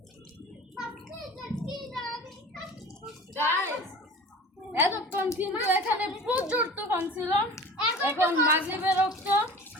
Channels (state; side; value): normal; both; correlation 0.39